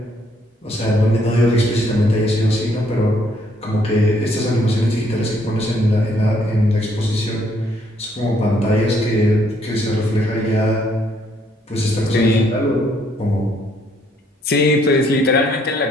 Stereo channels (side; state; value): both; normal; correlation 0.68